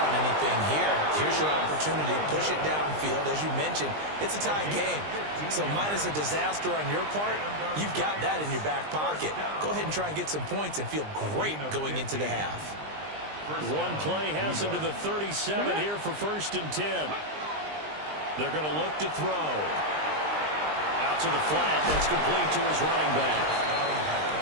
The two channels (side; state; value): left; late; 20 ms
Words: anything here. Here's your opportunity. Push it downfield. As you mentioned, it's a tie game. So minus a disaster on your part, you've got that in your back pocket. Go ahead and try and get some points and feel great going into the half. One play has him to the 37 here for 1st and 10. They're going to look to throw. Out to the flat. That's complete to his running back.